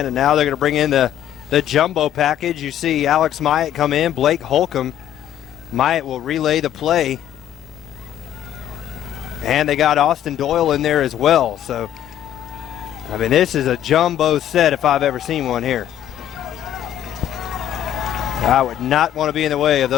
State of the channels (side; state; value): right; quieter; 11.1 dB